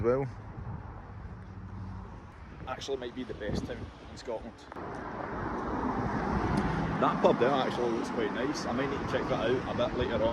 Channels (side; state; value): both; identical; correlation 1.00